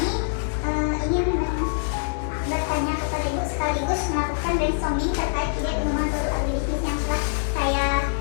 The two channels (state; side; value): silent; right; 62 dB below the other